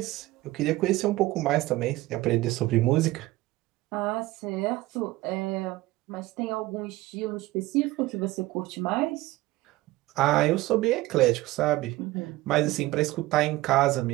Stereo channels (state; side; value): quieter; left; 18.5 dB